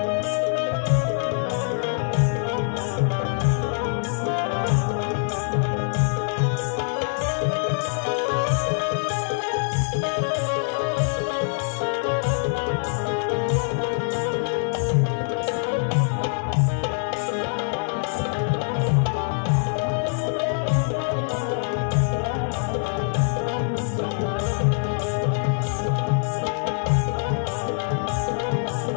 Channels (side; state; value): right; silent; 57 dB below the other